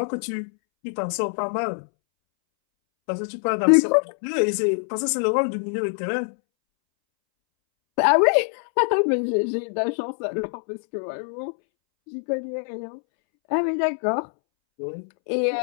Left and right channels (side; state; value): right; silent; 63 dB below the other